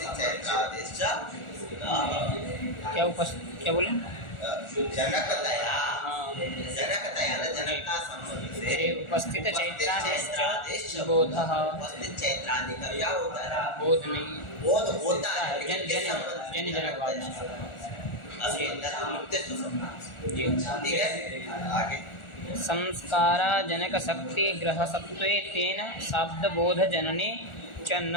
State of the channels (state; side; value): late; right; 1.4 ms